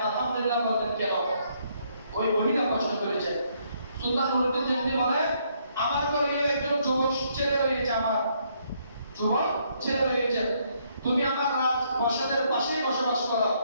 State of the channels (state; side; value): inverted; both; correlation -0.71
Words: আলহামদুলিল্লাহ বললেন কেন? ওই মহিলা প্রশ্ন করেছে। সুলতান নুরুদ্দিন জাহাঙ্গীর বলে, আমার ঘরে একজন যুবক ছেলে রয়েছে, আমার যুবক ছেলে রয়েছে, তুমি আমার রাজপ্রাসাদের পাশেই বসবাস করো।